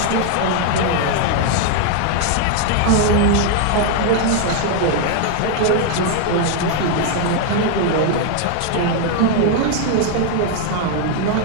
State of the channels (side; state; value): both; different; correlation 0.00